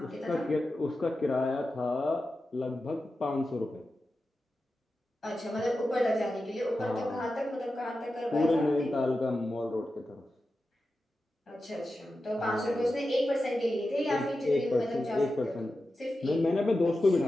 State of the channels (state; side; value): normal; both; correlation 0.92